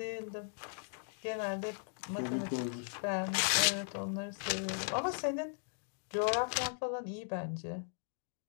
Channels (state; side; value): silent; right; digital silence